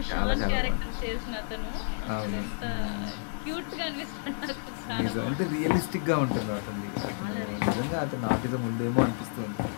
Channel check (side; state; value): right; silent; digital silence